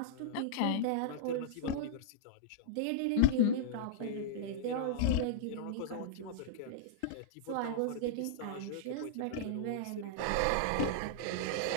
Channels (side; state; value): both; different; correlation -0.02